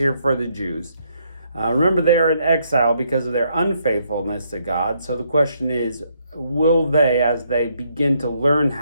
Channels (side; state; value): both; inverted; correlation -0.73